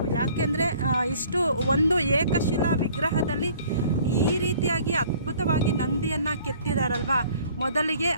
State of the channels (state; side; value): inverted; both; correlation -0.54